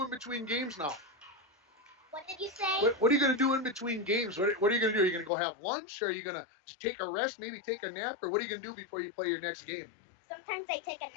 in between games now? What did you say? What are you going to do in between games? What are you going to do? Are you going to go have lunch? Or are you going to take a rest, maybe take a nap? Or what are you going to do before you play your next game? Sometimes I take a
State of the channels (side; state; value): right; drops out; at 5.3 s